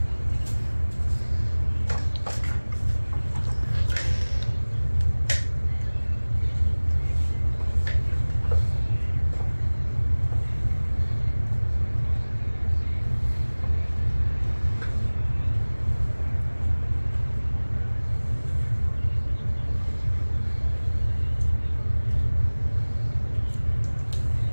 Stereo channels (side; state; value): both; inverted; correlation -1.00